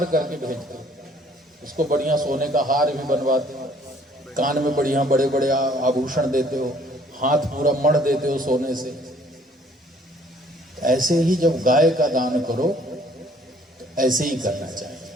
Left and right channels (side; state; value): both; normal; correlation 0.59